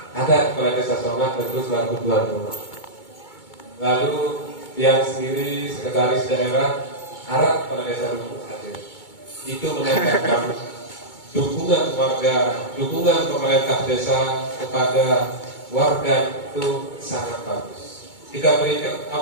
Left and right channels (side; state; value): right; late; 2.2 ms